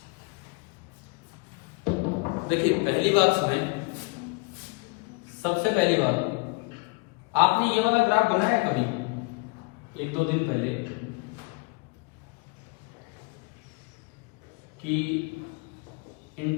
देखिए पहली बात सुने, सबसे पहली बात, आपने ये वाला ग्राफ बनाया है कभी 1-2 दिन पहले कि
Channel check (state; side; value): quieter; right; 29.1 dB